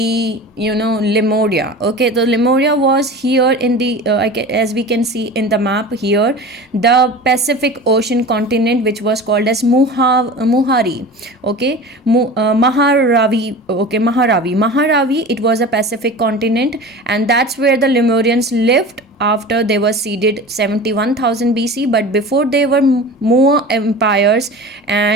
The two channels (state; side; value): normal; both; correlation 0.35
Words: Lemuria, okay. The Lemuria was here in the as we can see in the map here, the Pacific Ocean continent, which was called as Muhari, okay. Maharavi, okay. Maharavi, it was a Pacific continent, and that's where the Lemurians lived after they were seeded 71,000 BC, but before they were Moa empires,